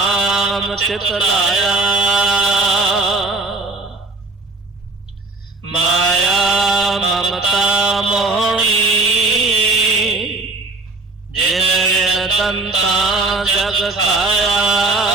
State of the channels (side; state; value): left; quieter; 3.2 dB